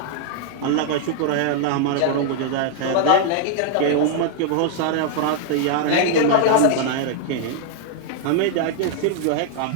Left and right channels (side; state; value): both; different; correlation -0.01